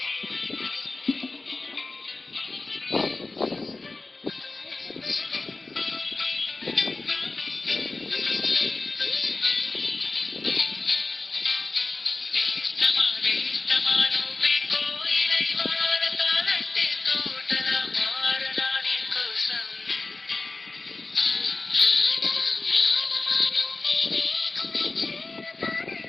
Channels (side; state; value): right; quieter; 3.5 dB